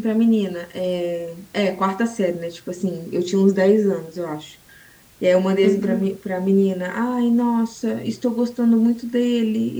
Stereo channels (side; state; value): both; identical; correlation 1.00